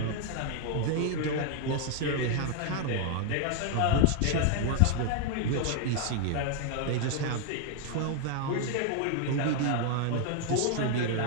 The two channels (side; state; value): both; different; correlation 0.00